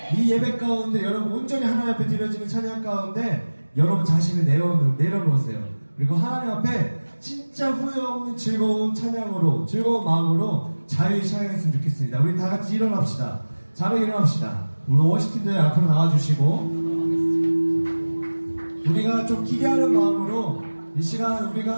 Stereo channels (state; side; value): inverted; both; correlation -1.00